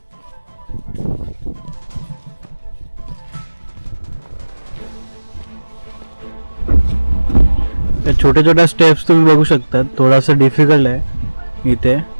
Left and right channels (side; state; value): both; inverted; correlation -1.00